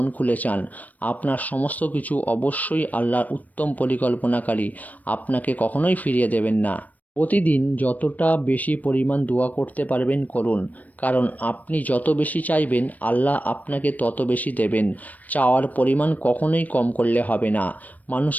খুলে চান। আপনার সমস্ত কিছু অবশ্যই আল্লাহর উত্তম পরিকল্পনাকারী, আপনাকে কখনোই ফিরিয়ে দেবেন না। প্রতিদিন যতটা বেশি পরিমাণ দোয়া করতে পারবেন করুন, কারণ আপনি যত বেশি চাইবেন আল্লাহ আপনাকে তত বেশি দেবেন। চাওয়ার পরিমাণ কখনোই কম করলে হবে না।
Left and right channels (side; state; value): right; late; 0.076 ms